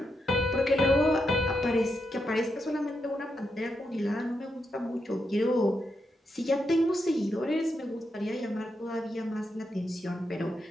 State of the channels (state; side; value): normal; both; correlation 0.83